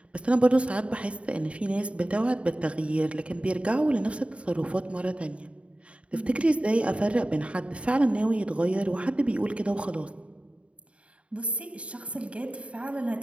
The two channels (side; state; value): left; late; 0.062 ms